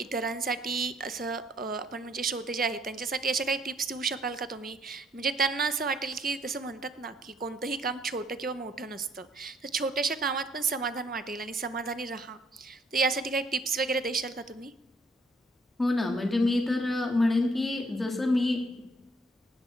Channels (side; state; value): both; normal; correlation 0.65